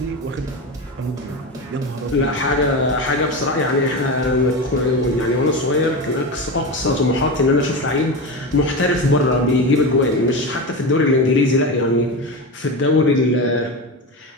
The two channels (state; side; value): normal; both; correlation 0.21